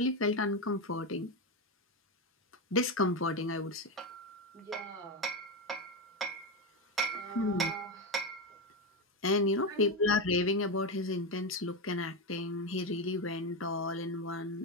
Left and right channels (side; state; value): both; normal; correlation 0.13